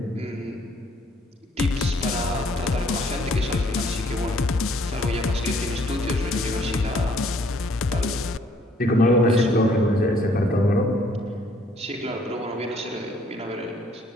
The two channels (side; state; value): both; normal; correlation 0.63